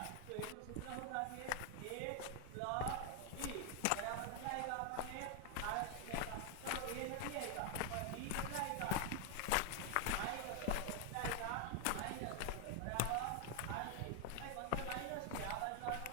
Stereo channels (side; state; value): both; different; correlation 0.00